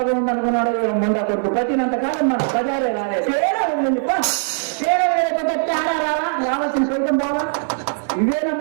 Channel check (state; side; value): silent; left; digital silence